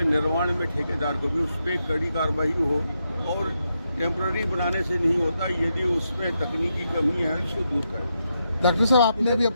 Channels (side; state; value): both; inverted; correlation -0.83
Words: निर्माण में ठेकेदार को भी उस पर कड़ी कार्रवाई हो। और टेम्पररी बनाने से नहीं होता, यदि उसमें तकनीकी कमी है उसको दूर करें। डॉक्टर साहब, आपने अभी